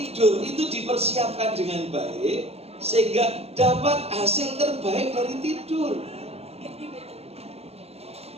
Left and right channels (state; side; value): late; left; 0.29 ms